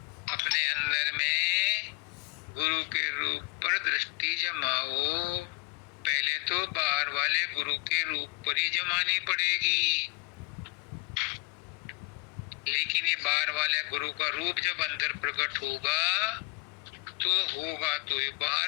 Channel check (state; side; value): quieter; right; 28.1 dB